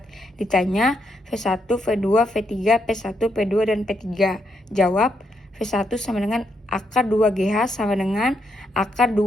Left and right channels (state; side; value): normal; both; correlation 0.78